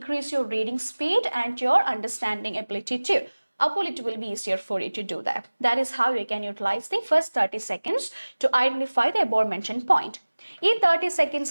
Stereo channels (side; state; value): both; inverted; correlation -1.00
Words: your reading speed and your understanding ability too. അപ്പോൾ it will be easier for you to do that. That is how you can utilize the first 30 seconds to identify the above mentioned point. ഈ 30 seconds